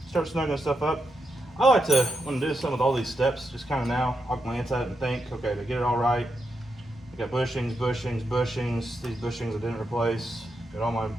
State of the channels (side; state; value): both; normal; correlation 0.84